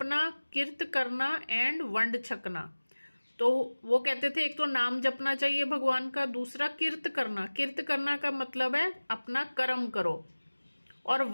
कीर्त करना एंड वंड छकना। तो वो कहते थे एक तो नाम जपना चाहिए भगवान का, दूसरा कीर्त करना। कीर्त करना का मतलब है अपना कर्म करो, और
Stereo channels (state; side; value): inverted; both; correlation -1.00